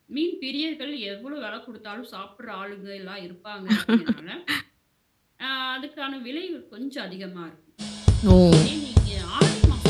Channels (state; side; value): identical; both; correlation 1.00